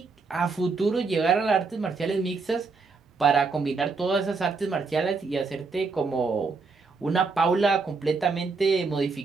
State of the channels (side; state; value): left; quieter; 4.4 dB